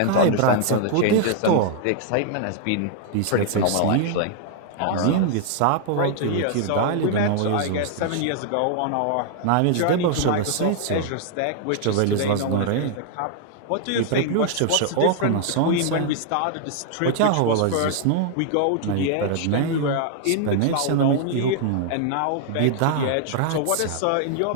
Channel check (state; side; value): different; both; correlation 0.00